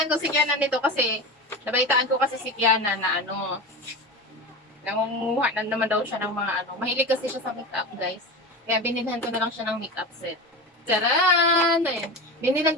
ko si Kiana nito kasi, nabalitaan ko kasi si Kiana na nangunguha na naman daw siya ng mga Mahilig kasi siya sa makeup, guys. Kaya binilhan ko na lang siya ng makeup set. Tcharan! Ayan. Binilhan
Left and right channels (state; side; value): normal; both; correlation 0.27